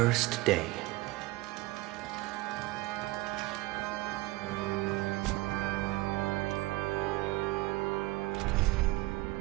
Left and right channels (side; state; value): left; quieter; 20.2 dB